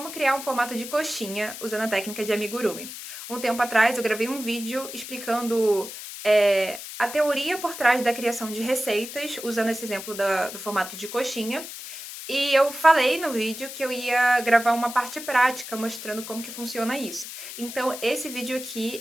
criar um formato de coxinha usando a técnica de amigurumi. Um tempo atrás eu gravei um vídeo explicando a teoria por trás da criação de receitas usando esse exemplo do formato de coxinha e eu falei no vídeo que eu ia gravar uma parte prática mostrando como que funciona isso. Então esse vídeo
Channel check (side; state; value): left; noise; hiss, 10 dB below the sound